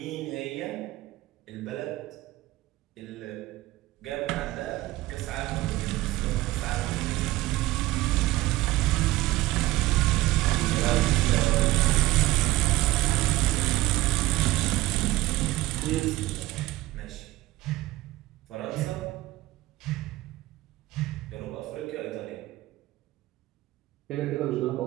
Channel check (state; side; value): quieter; left; 17.5 dB